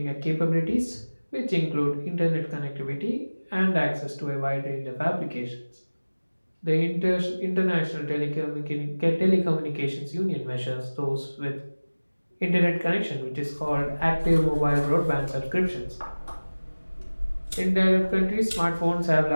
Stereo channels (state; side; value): inverted; both; correlation -1.00